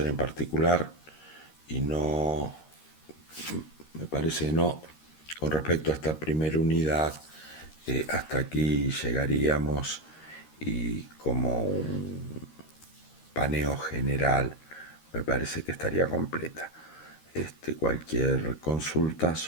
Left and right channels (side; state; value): right; late; 13 ms